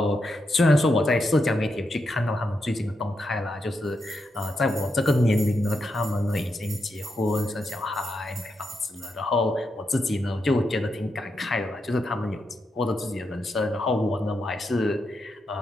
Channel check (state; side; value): normal; both; correlation 0.84